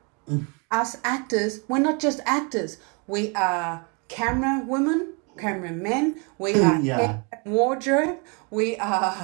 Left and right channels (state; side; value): quieter; left; 33.7 dB